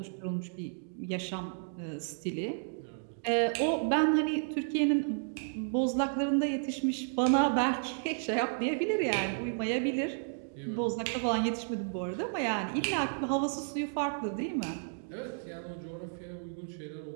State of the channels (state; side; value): silent; left; digital silence